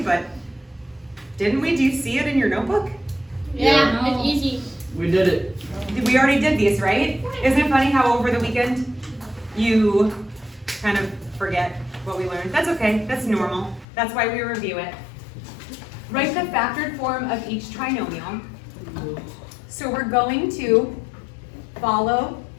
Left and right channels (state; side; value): drops out; right; at 13.9 s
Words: but didn't we? Do you see it in your notebook? Yeah, it's easy. We did it. We already did these, right? Isn't it funny how over the weekend you kind of forget what we learned? That's okay, that's normal. That's why we review it. Write the factored form of each trinomial. So we're going to follow